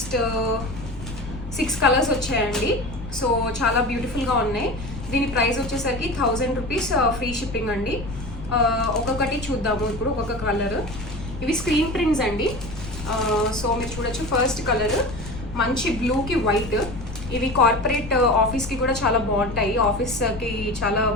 6 కలర్స్ వచ్చాయండి. సో చాలా బ్యూటిఫుల్గా ఉన్నాయి. దీని ప్రైస్ వచ్చేసరికి 1000 రూపీస్ ఫ్రీ షిప్పింగ్ అండి. ఒక్కొక్కటి చూద్దాము ఇప్పుడు, ఒక్కొక్క కలర్. ఇవి స్క్రీన్ ప్రింట్స్ అండి. సో మీరు చూడొచ్చు, ఫస్ట్ కలర్ మంచి బ్లూకి వైట్. ఇవి కార్పొరేట్ ఆఫీస్కి కూడా చాలా బాగుంటాయి, ఆఫీస్కి చాలా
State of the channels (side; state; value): left; noise; rumble, 11 dB below the sound